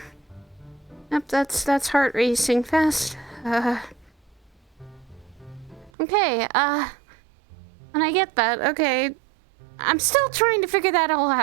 Yep, that's heart racing fast. Okay, and I get that. Okay, I'm still trying to figure that all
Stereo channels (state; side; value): drops out; left; at 5.9 s